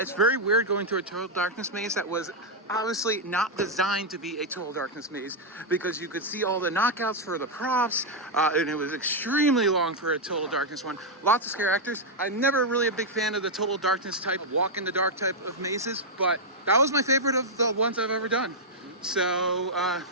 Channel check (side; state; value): both; normal; correlation -0.03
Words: very weird going through a Total Darkness maze that was obviously not designed to be a Total Darkness maze, because you could see all the knockouts for the props, and it was extremely long for a Total Darkness one. Lots of scare actors. I'm never really a big fan of the Total Darkness type, walk in the dark type of mazes, but that was my favorite of the ones I've ever done. So